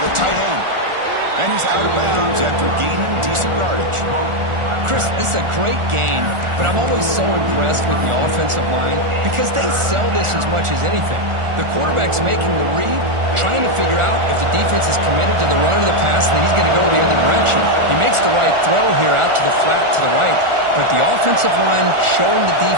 the tight end. And he's out of bounds after gaining decent yardage. Chris, this is a great game, but I'm always so impressed with the offensive line because they sell this as much as anything. The quarterback's making the read, trying to figure out if the defense is committed to the run or the pass, and then he's going to go the other direction. He makes the right throw here out to the flat to the right, but the offensive line showing the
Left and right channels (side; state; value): left; late; 1.4 ms